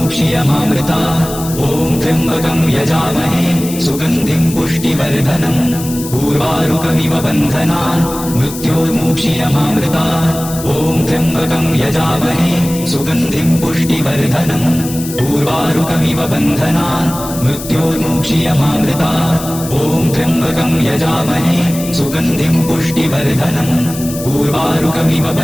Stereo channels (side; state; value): left; noise; hiss, 11 dB below the sound